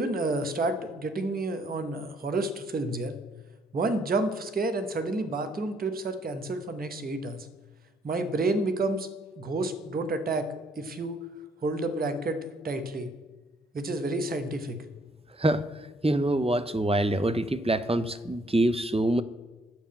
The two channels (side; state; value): both; normal; correlation 0.67